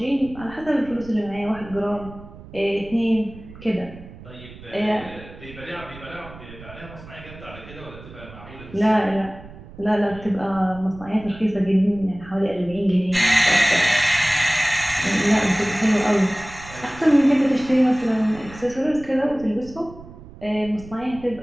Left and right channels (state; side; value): noise; right; rumble, 17 dB below the sound